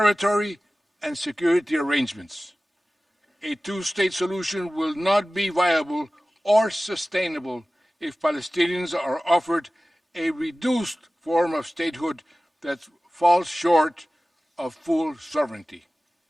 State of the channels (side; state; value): both; normal; correlation 0.97